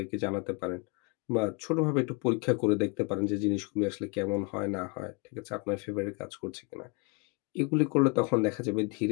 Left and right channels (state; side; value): quieter; right; 30.6 dB